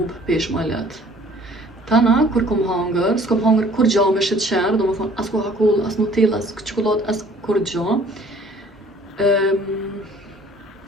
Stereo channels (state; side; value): normal; both; correlation 0.54